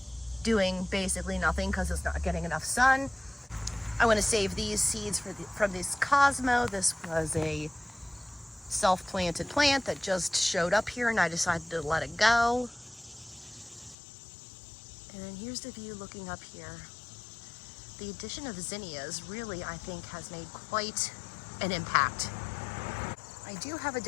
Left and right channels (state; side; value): drops out; right; at 14.0 s